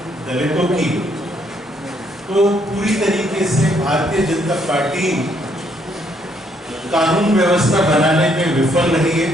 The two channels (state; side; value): normal; both; correlation 0.70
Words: दलितों की, तो पूरी तरीके से भारतीय जनता पार्टी कानून व्यवस्था बनाने में विफल रही है।